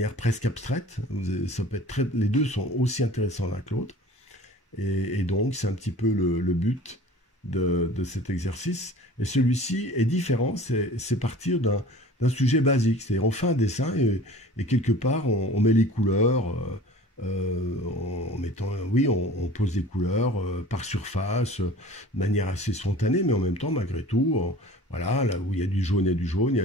presque abstraite. Ça peut être les deux sont aussi intéressants l'un que l'autre. Et donc, c'est un petit peu le but de cet exercice. Et celui-ci est différent, c'est partir d'un sujet basique. C'est-à-dire, on fait un dessin et quelque part, on met les couleurs, en mettant, oui, on pose des couleurs par surface, de manière assez spontanée, mais en même temps, malgré tout, voilà, là où il y a du jaune, il y a du jaune, il y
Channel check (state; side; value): normal; both; correlation 0.44